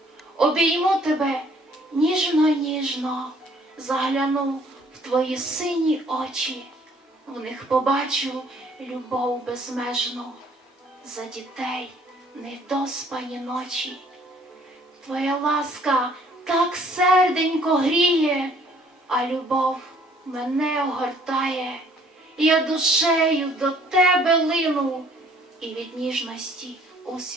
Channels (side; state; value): both; normal; correlation 0.59